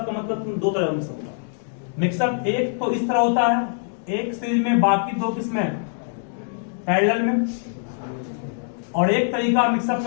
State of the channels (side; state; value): right; silent; digital silence